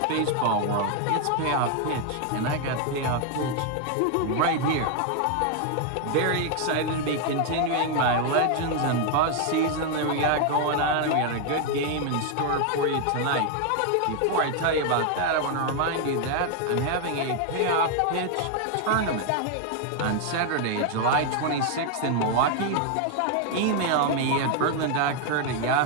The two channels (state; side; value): different; both; correlation 0.00